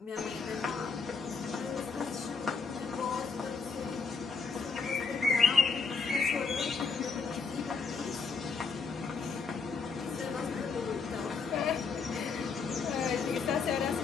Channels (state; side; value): quieter; right; 4.9 dB